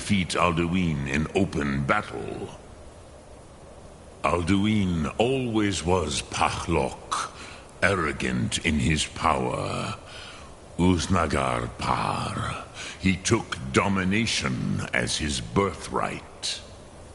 Alduin in open battle. Alduin always was Pachlok, arrogant in his power. Uznagar Par. He took domination as his birthright.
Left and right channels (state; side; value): identical; both; correlation 1.00